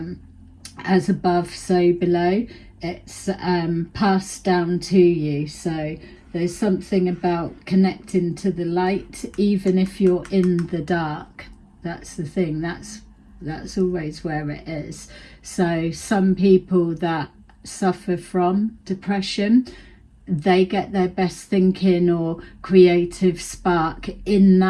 as above so below, it's passed down to you. So there's something about connecting to the light, even if you're in the dark. That's the thing. That's always where it is. So some people that suffer from depression, they get their best thinking or creative spark in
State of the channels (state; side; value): identical; both; correlation 1.00